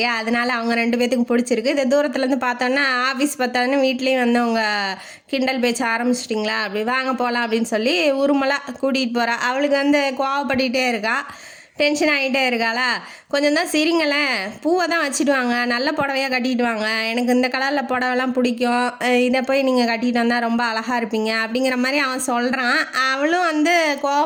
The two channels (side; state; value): both; identical; correlation 1.00